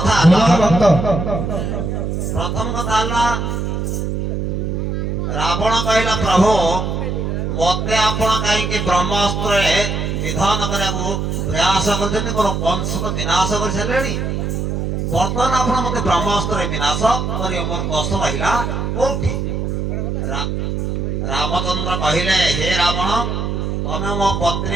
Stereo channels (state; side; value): noise; right; hum, 1 dB below the sound